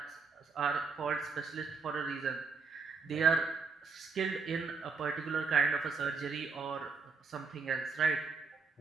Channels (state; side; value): quieter; left; 4.8 dB